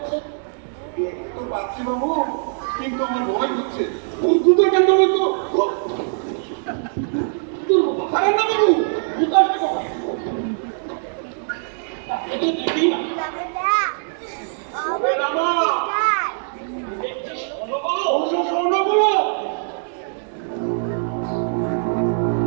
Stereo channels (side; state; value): left; silent; digital silence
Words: আছে। দেখতে তো পাচ্ছি বাবু, কিন্তু আমার ভয় হচ্ছে। দ্রুত কেন বলতো আরে না বাবু, জুতো আসবে কখন?